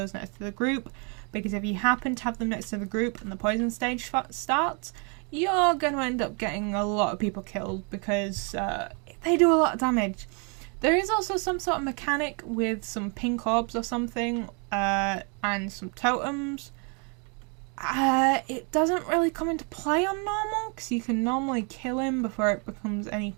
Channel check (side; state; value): left; quieter; 35.5 dB